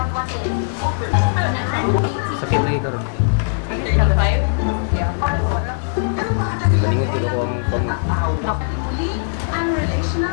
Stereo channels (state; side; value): silent; right; digital silence